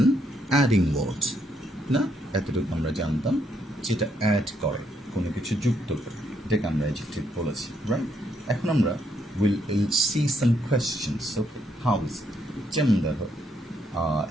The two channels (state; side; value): normal; both; correlation 0.74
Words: an adding word. না এতটুকু আমরা জানতাম যেটা add করে কোনো কিছু যুক্ত করে এটাকে আমরা adjective বলেছি, রাইট? এখন আমরা will see some questions. Okay, how is it? যেমন দেখো